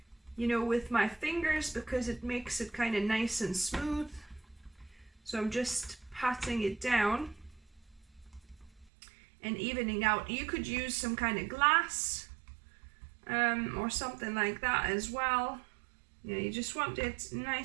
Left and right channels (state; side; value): drops out; left; at 8.9 s